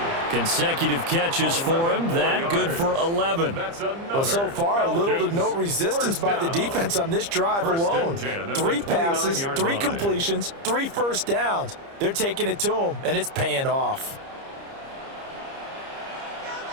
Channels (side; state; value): left; late; 30 ms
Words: Consecutive catches for him. That good for 11. Well, so far, little to no resistance by the defense on this drive alone. 3 passes, 3 completions, 3 first downs. They're taking it to him, and it's paying off.